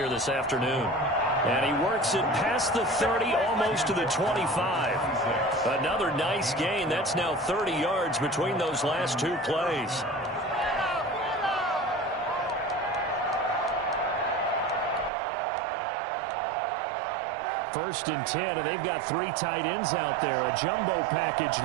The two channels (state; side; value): drops out; left; at 15.1 s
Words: this afternoon. And he works it past the 30, almost to the 25. Another nice gain. That's now 30 yards between those last 2 plays. First and 10, and they've got 3 tight ends out there. A jumbo package